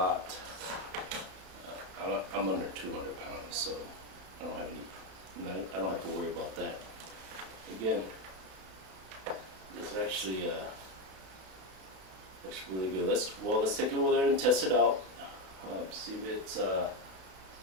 I'm under 200 pounds, so I don't have to worry about that. Again, this is actually really good. Let's take it over there and test it out. See if it's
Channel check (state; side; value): late; left; 32 ms